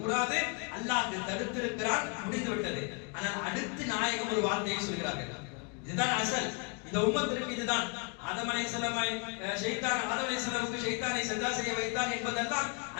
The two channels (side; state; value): right; quieter; 33.9 dB